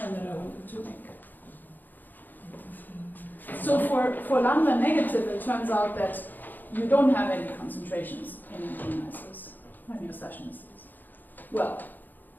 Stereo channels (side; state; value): right; late; 0.087 ms